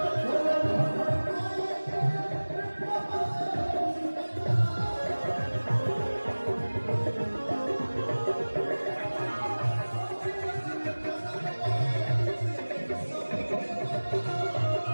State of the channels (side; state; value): both; inverted; correlation -1.00